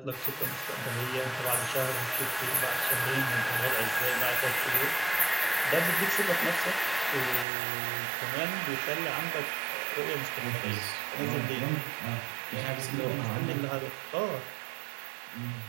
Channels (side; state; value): left; drops out; at 7.5 s